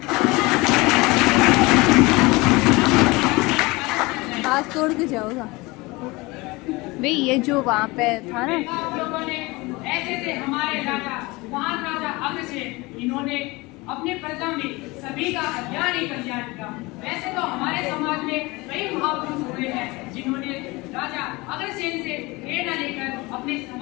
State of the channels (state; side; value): quieter; right; 23.2 dB